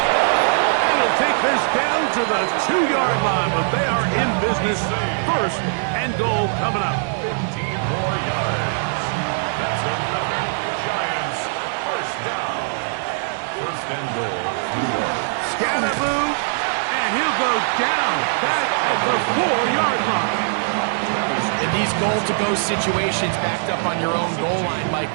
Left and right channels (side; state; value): left; silent; digital silence